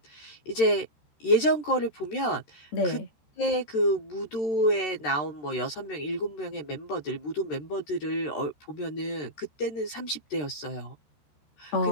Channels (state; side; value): late; right; 13 ms